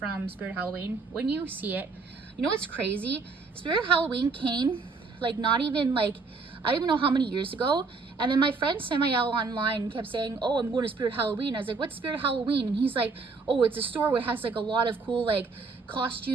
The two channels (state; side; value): quieter; left; 4.3 dB